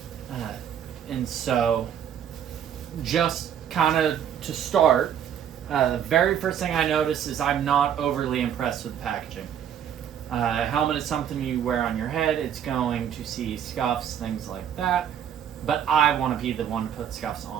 And so, just kind of to start, the very first thing I noticed is I'm not overly impressed with the packaging. A helmet is something you wear on your head. It's going to see scuffs, things like that. But I want to be the one to put scuffs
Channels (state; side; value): quieter; left; 9.3 dB